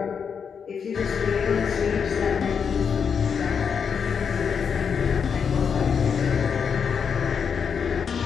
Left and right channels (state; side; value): quieter; right; 6.6 dB